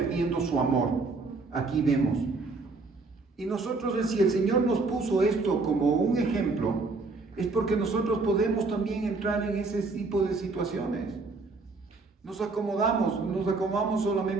su amor. Aquí vemos. Y nosotros, si el Señor nos puso esto como un ejemplo, es porque nosotros podemos también entrar en ese tipo de situaciones. Nos acomodamos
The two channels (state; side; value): quieter; left; 3.8 dB